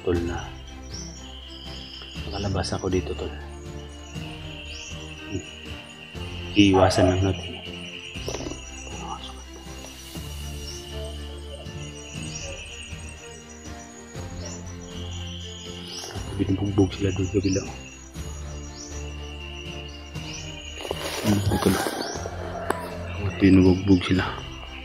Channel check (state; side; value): identical; both; correlation 1.00